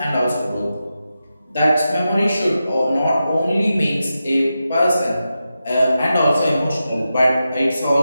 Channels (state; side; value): inverted; both; correlation -0.90